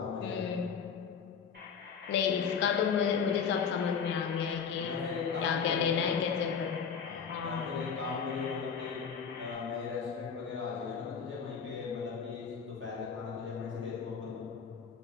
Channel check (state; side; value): quieter; right; 6.5 dB